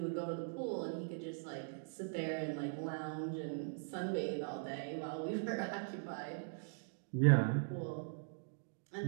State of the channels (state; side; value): silent; left; digital silence